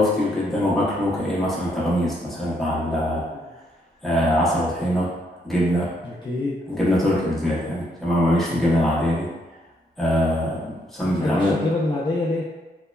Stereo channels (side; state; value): both; normal; correlation 0.73